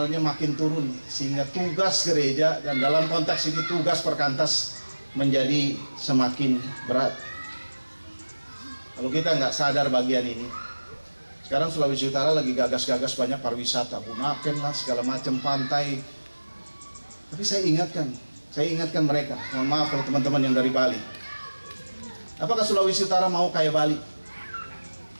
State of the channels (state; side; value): inverted; both; correlation -1.00